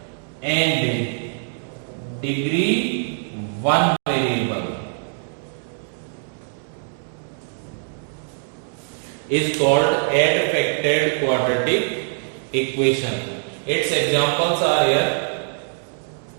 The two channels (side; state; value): left; silent; digital silence